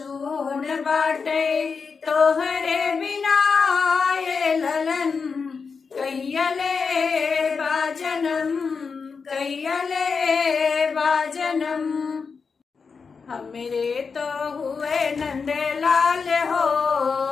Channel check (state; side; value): quieter; right; 5.3 dB